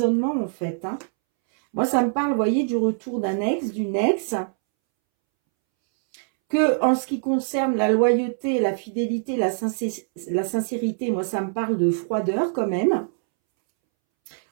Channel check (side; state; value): left; silent; 63 dB below the other